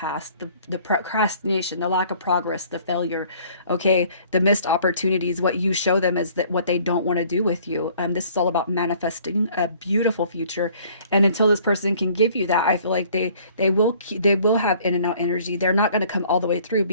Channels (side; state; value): both; inverted; correlation -0.56